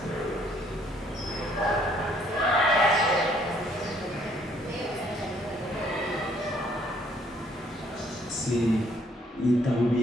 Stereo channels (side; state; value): both; normal; correlation 0.65